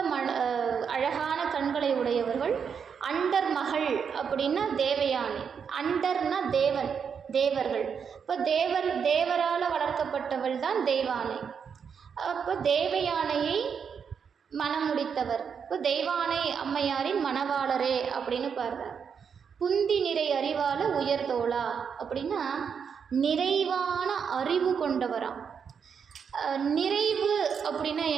அழகான கண்களை உடையவர்கள். அண்டர் மகள் அப்படின்னா தேவயானை, அண்டர்னா தேவர்கள். இப்போ தேவரால் வளர்க்கப்பட்டவள் தான் தெய்வானை. அப்போ தேவயானையை மணமுடித்தவர். இப்போ தெய்வானை அம்மையாரின் மணவாளரே அப்படின்னு பாடுறார். புந்தி நிறை அறிவால உயர்தோளா அப்படின்னா நிறைவான அறிவு கொண்டவராம். நிறைவு அப்படின்னா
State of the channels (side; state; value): left; quieter; 6.8 dB